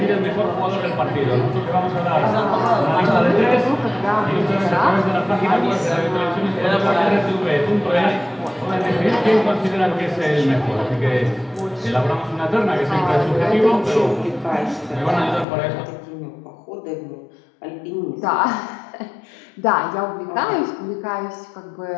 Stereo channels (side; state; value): right; drops out; at 15.5 s